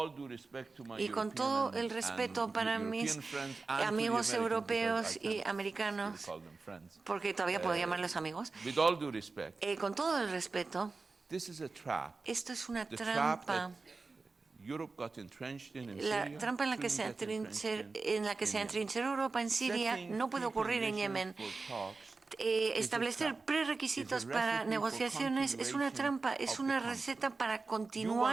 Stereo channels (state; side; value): quieter; left; 4.0 dB